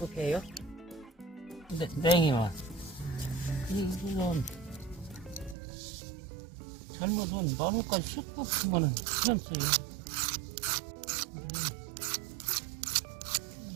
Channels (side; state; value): left; drops out; at 5.6 s